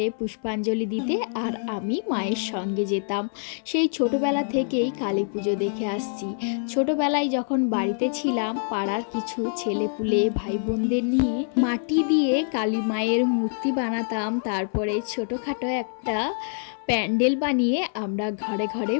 পুষ্পাঞ্জলি দিতে, আর আমি মায়ের সঙ্গে যেতাম। সেই ছোটোবেলা থেকেই কালী পুজো দেখে আসছি। ছোটোবেলায় যখন বাড়িতে ছিলাম, পাড়ার কিছু ছেলেপুলে ভাই বোনদের নিয়ে মাটি দিয়ে কালী মায়ের মূর্তি বানাতাম। তারপরে ছোটোখাটো একটা প্যান্ডেল বানিয়ে আমরা ঘরে ঘরে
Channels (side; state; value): right; silent; 62 dB below the other